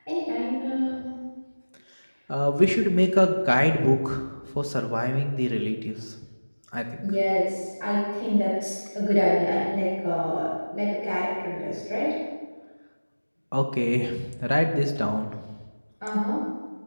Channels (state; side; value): inverted; both; correlation -1.00